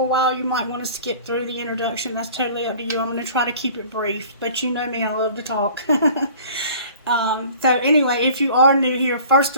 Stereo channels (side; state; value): both; inverted; correlation -0.48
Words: a while, you might want to skip through the introduction. That's totally up to you. I'm going to try to keep it brief, but you know me, I love to talk. So anyway, if you are new here, first